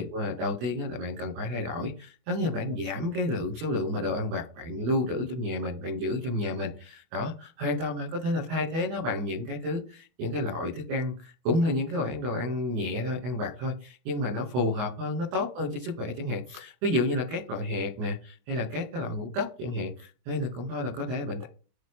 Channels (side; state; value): left; late; 25 ms